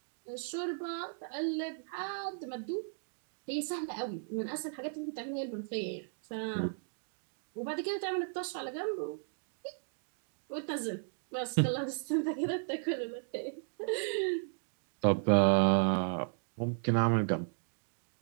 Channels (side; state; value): left; silent; digital silence